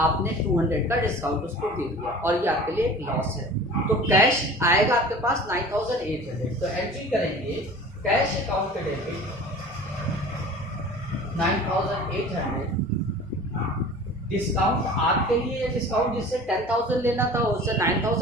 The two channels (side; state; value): both; normal; correlation 0.41